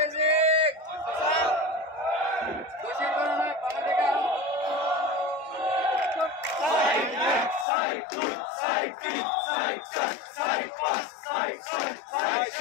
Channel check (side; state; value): right; drops out; at 7.7 s